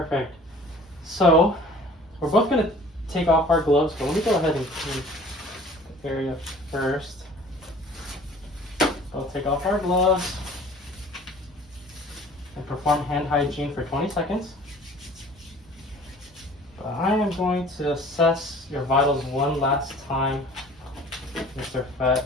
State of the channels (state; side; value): normal; both; correlation 0.48